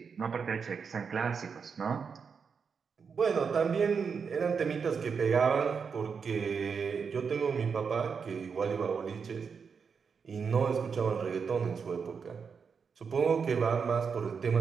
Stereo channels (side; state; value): left; quieter; 5.9 dB